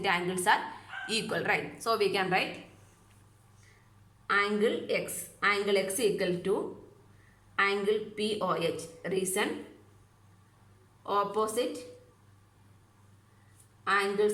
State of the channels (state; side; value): identical; both; correlation 1.00